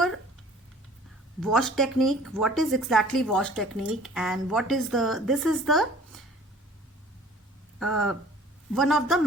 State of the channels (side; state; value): both; normal; correlation 0.50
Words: wash technique, what is exactly wash technique, and what is the, this is the one of the